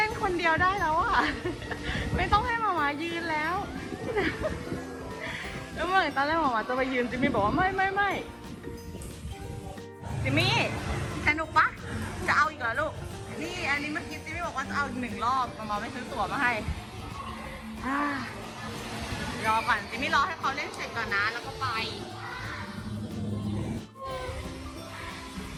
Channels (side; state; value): both; identical; correlation 1.00